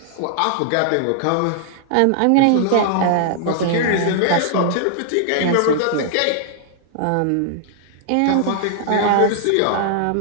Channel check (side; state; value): both; different; correlation -0.01